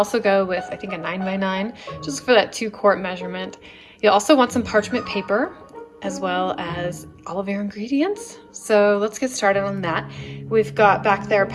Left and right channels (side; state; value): both; identical; correlation 1.00